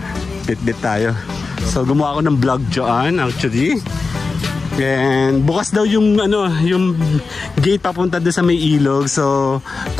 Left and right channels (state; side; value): quieter; right; 4.2 dB